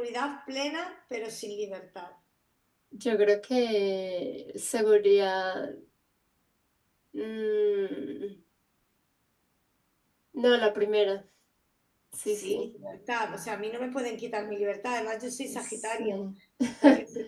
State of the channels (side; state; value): both; identical; correlation 1.00